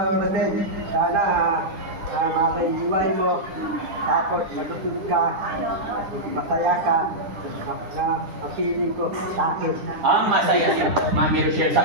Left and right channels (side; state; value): left; late; 10 ms